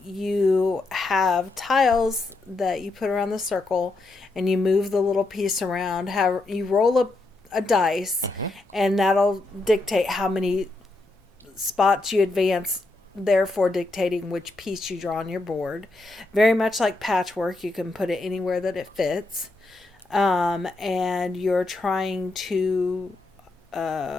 you have tiles that you put around the circle, and you move the little piece around. You roll a dice, and that'll dictate how many spots you advance, therefore dictating which piece you draw on your board. Very much like Patchwork, you can put it anywhere that it fits. And you're trying to...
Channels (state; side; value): quieter; right; 3.0 dB